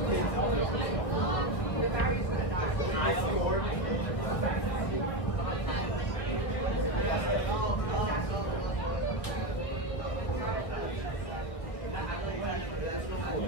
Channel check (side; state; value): right; late; 1.4 ms